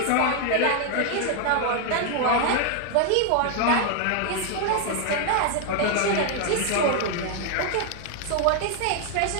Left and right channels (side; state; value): both; different; correlation 0.00